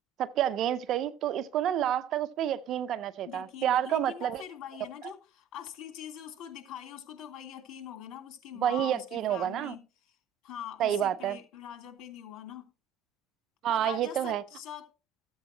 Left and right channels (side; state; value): left; quieter; 8.4 dB